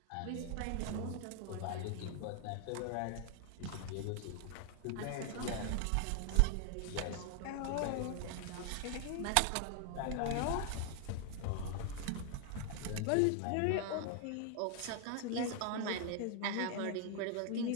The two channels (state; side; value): different; both; correlation 0.00